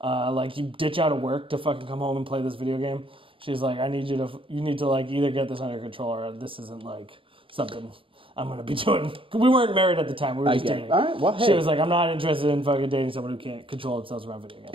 You ditch out of work to fucking come home and play this video game." She's like, you need to like either get this under control or this isn't like something I'm going to be doing. We weren't married at the time. We were just dating. All right, well, hey. She was like, "I'm not interested in fucking dating someone who can't control themselves around video games."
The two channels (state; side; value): late; left; 0.25 ms